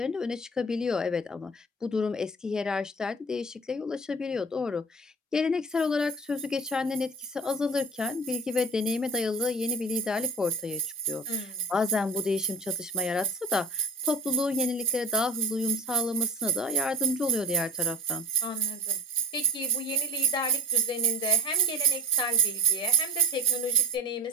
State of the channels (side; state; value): both; normal; correlation 0.34